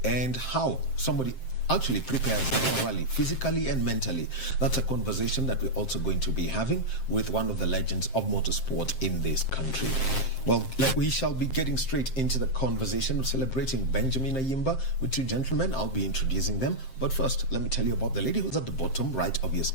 and how somebody actually prepares for a rally physically and mentally. That's a conversation that we're also going to be having with one of the legends of motorsport in this country. Well, we shall be getting straight into the conversation of celebrating Benjamin Ayimba with two gentlemen. I'll be introducing them. But first, let me tell you about the lady who's at the bottom right of your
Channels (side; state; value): right; late; 7.6 ms